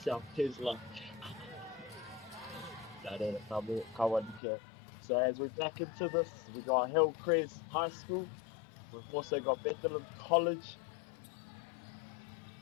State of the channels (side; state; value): right; drops out; at 4.4 s